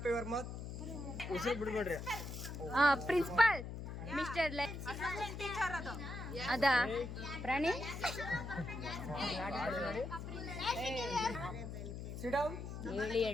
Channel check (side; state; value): left; noise; hum, 7 dB below the sound